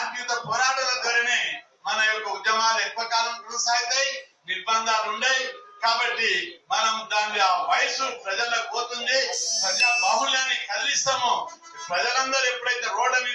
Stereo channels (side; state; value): both; identical; correlation 1.00